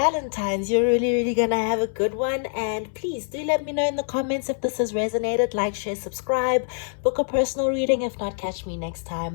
You're really gonna have a good one. And please do let me know in the comments if this has resonated. Like, share, subscribe, book a personal reading. If not, catch me next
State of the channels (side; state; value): right; silent; 62 dB below the other